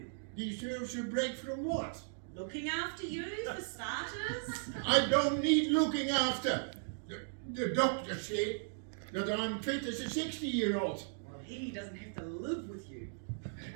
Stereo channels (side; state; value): left; silent; digital silence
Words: Deserves a break from what? Looking after you, for starters. I don't need looking after. The doctor said that I'm fit as a 60-year-old. Well, he doesn't have to live with you.